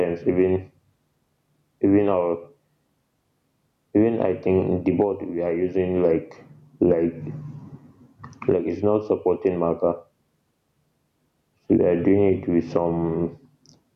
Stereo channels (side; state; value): both; identical; correlation 1.00